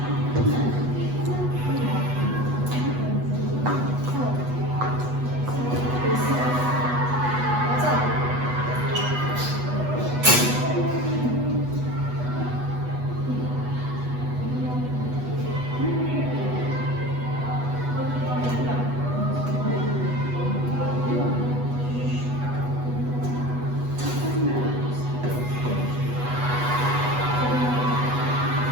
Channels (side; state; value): left; late; 8.1 ms